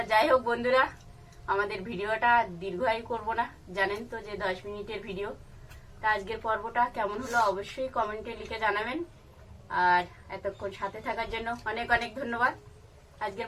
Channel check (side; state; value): both; identical; correlation 1.00